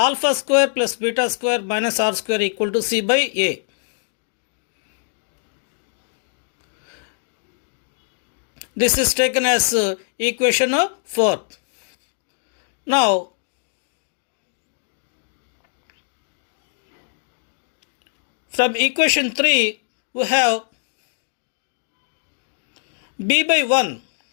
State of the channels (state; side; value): silent; right; digital silence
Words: square plus beta square minus r square equal to c by a. This is taken as equation 4. Now, from equation 3, we have b by 1.